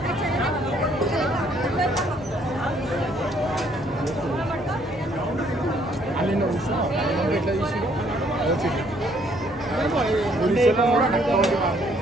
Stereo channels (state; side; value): normal; both; correlation 0.65